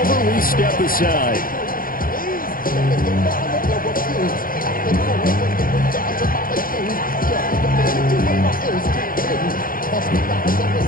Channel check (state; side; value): late; right; 0.41 ms